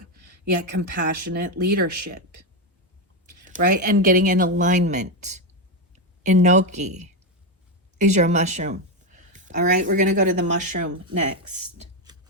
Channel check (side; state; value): both; normal; correlation 0.08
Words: yet compassionate leadership, right? And getting in alignment. Enoki is your mushroom. All right, we're going to go to the mushroom next.